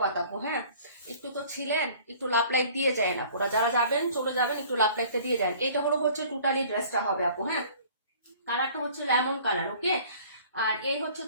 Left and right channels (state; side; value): inverted; both; correlation -0.50